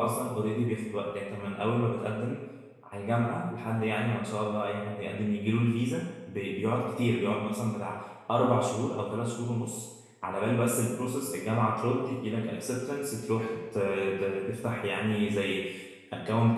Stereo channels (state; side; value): identical; both; correlation 1.00